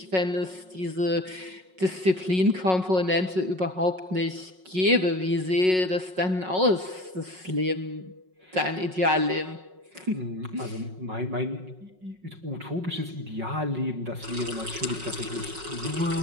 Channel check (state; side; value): late; left; 5.4 ms